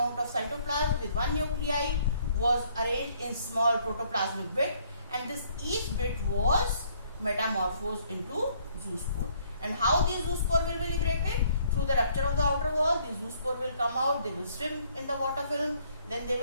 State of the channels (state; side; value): inverted; both; correlation -0.65